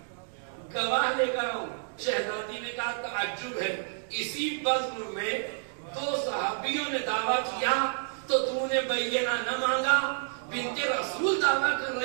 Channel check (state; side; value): silent; left; digital silence